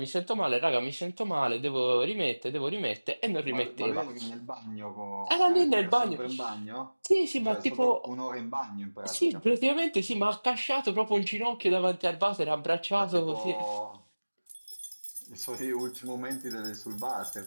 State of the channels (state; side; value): inverted; both; correlation -1.00